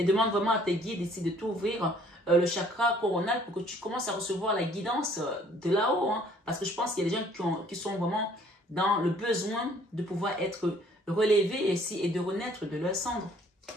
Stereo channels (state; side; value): normal; both; correlation 0.59